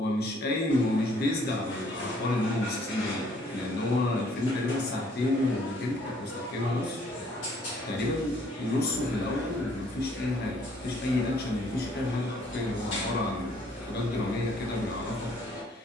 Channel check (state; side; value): normal; both; correlation 0.62